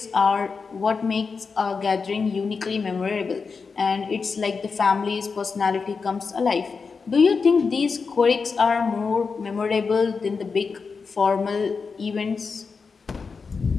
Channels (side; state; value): right; quieter; 5.0 dB